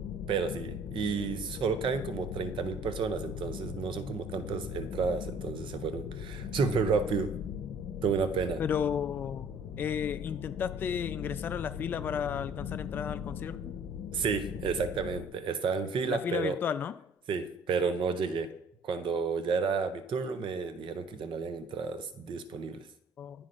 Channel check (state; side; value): normal; both; correlation 0.54